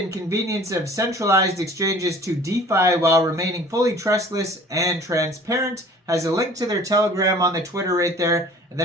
convenience of centralized exchanges to DeFi while remaining fully trustless and transparent. Has a link to their Telegram on the Twitter right there. And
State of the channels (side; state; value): both; normal; correlation 0.48